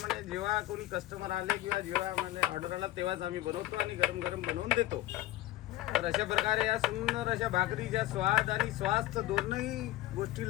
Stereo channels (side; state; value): right; quieter; 15.9 dB